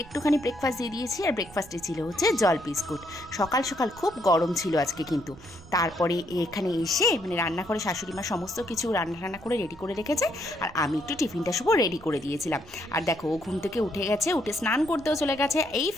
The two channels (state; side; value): noise; right; rumble, 21 dB below the sound